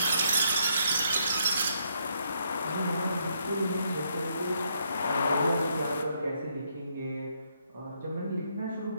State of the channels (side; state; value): both; inverted; correlation -0.74